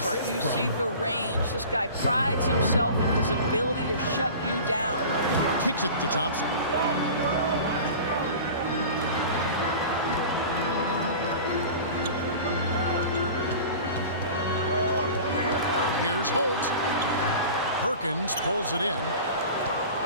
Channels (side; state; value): both; inverted; correlation -0.38